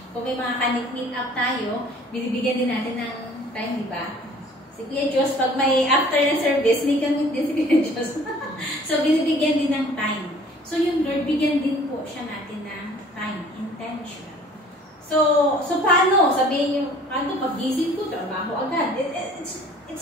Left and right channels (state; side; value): normal; both; correlation 0.51